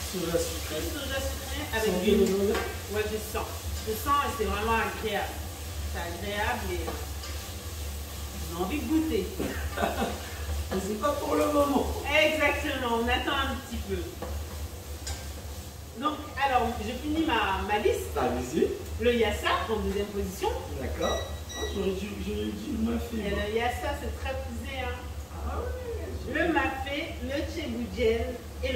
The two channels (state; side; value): identical; both; correlation 1.00